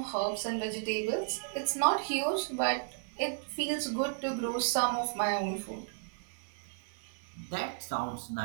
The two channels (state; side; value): silent; left; digital silence